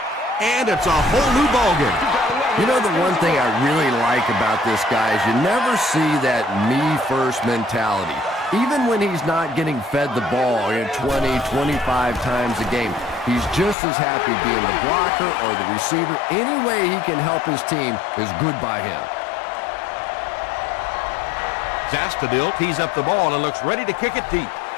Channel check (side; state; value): right; drops out; at 13.8 s